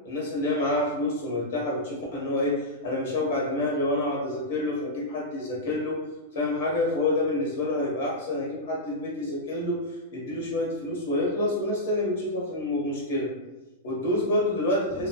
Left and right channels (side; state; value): both; normal; correlation -0.09